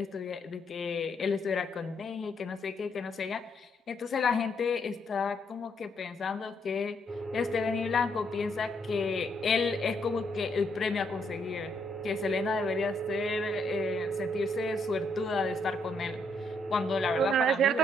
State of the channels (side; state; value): both; normal; correlation 0.74